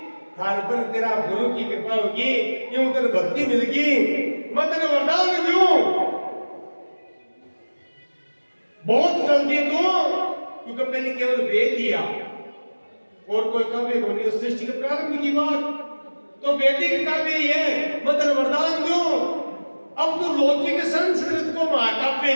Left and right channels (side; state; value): both; inverted; correlation -1.00